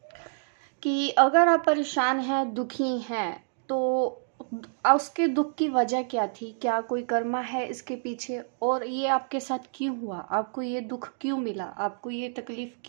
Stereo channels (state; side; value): silent; left; digital silence